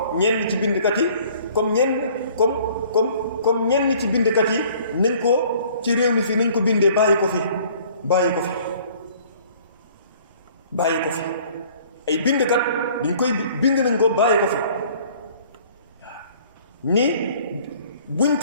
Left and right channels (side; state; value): both; inverted; correlation -0.54